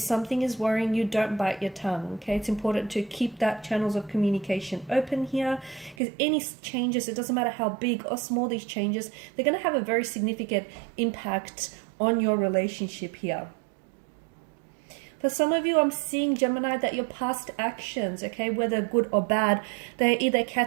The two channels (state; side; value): drops out; left; at 6.0 s